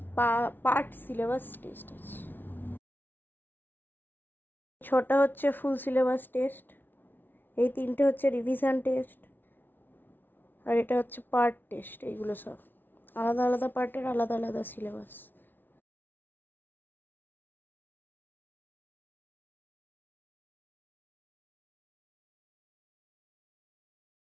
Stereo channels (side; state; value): right; late; 0.094 ms